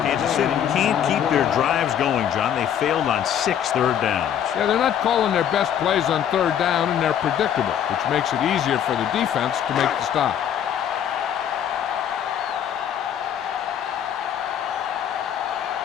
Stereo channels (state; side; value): quieter; right; 9.4 dB